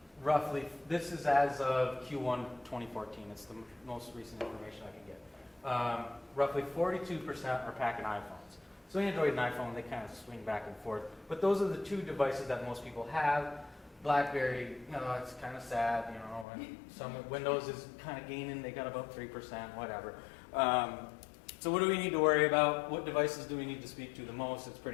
Roughly, this is as of Q1 2014. It's the most recent information I can get. Roughly 42% are packing iPhones. So Android and iPhone, they kind of swing back and forth. But those are the two devices that most people have. BlackBerry, it's kind of sad, and some Windows is kind of gaining. They got about 3%, whatever. So what do we need to worry about? What devices do we need to speak to the most? It's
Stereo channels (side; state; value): right; drops out; at 16.4 s